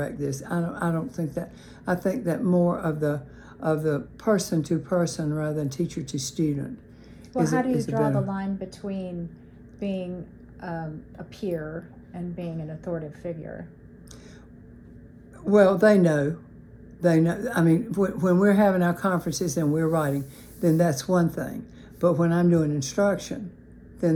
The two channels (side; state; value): both; identical; correlation 1.00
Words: this. I don't think that. I think that more of the person to person rather than teacher to student. Well, how do you draw the line between being a peer and being an authoritative figure? Well, they know. I mean, when we're having our conferences and we're writing, then that's one thing. But when I'm doing instruction,